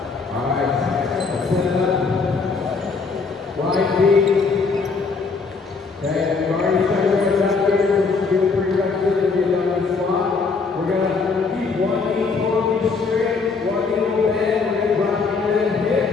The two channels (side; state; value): right; quieter; 4.5 dB